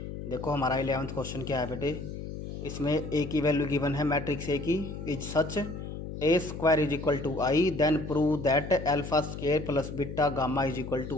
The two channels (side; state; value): left; noise; hum, 8 dB below the sound